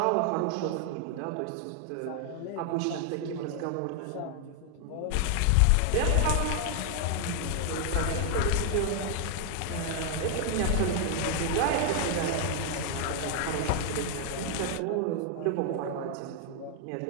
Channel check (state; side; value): different; both; correlation 0.00